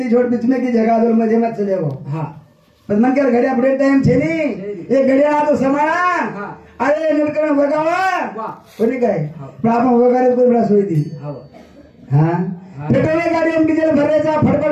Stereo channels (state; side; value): identical; both; correlation 1.00